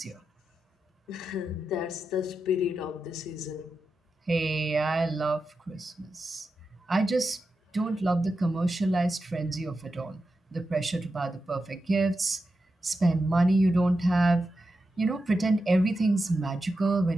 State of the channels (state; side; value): normal; both; correlation 0.89